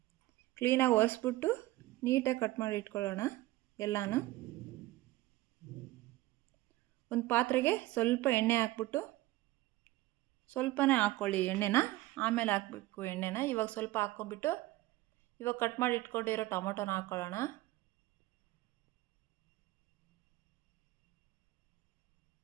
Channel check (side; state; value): left; quieter; 17.8 dB